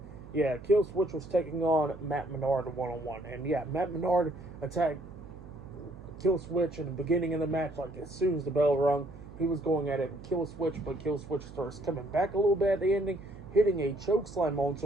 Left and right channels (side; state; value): right; noise; hum, 16 dB below the sound